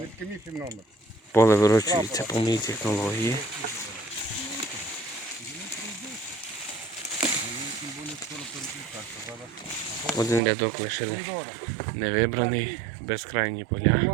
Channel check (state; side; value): drops out; left; at 10.4 s